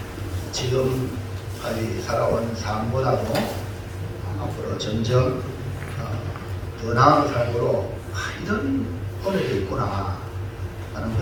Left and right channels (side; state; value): both; identical; correlation 1.00